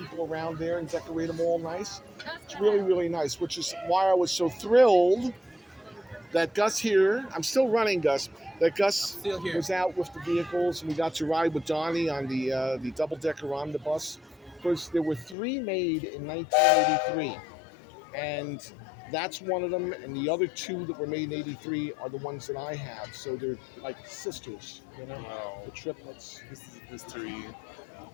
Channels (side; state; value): right; drops out; at 15.4 s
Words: around there and decorate them all nice. It's really, really nice, which is why I was so thrilled that Gus here, I'm still running Gus, that Gus Still here. was out with the vehicles, and we got to ride with Donnie on the double-decker omnibus. Because there were 3 made in 1983, and that's one of them, and the other 2 that were made in 83 are the ones that I have, so they're like sisters, Wow. the triplets, This is history.